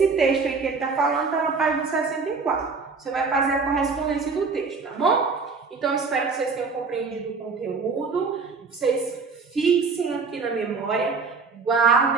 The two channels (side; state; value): left; quieter; 4.7 dB